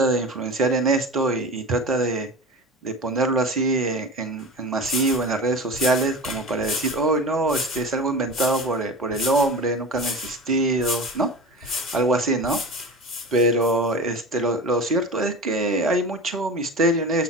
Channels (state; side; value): normal; both; correlation 0.31